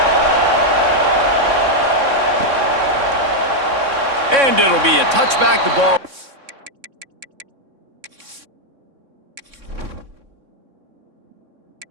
And it'll be a touchback, the ball.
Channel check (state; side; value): late; left; 3.6 ms